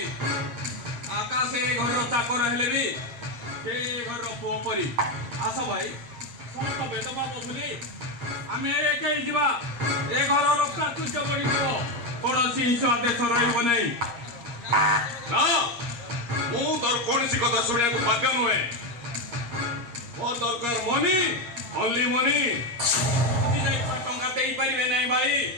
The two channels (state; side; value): late; left; 8.5 ms